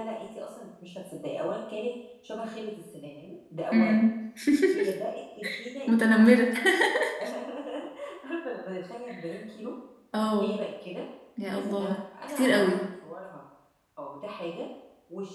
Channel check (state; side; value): identical; both; correlation 1.00